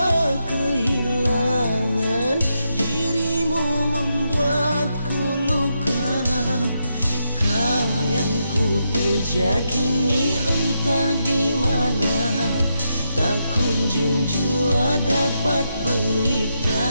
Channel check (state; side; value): inverted; both; correlation -0.82